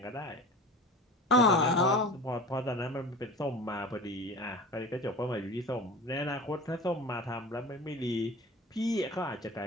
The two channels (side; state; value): both; normal; correlation 0.37